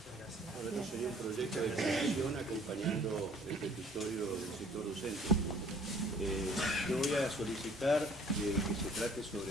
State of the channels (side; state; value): both; normal; correlation 0.54